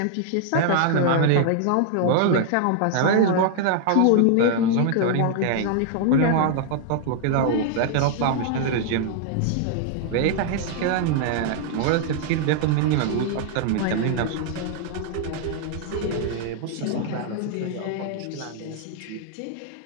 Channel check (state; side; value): different; both; correlation -0.01